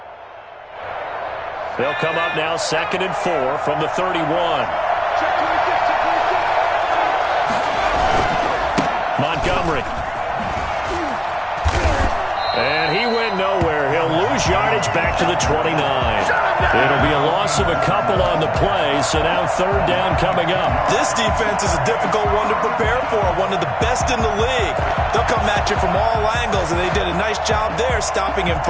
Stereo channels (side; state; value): both; identical; correlation 1.00